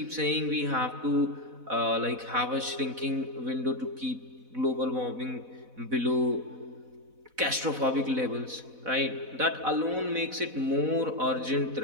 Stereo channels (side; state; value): left; late; 4.0 ms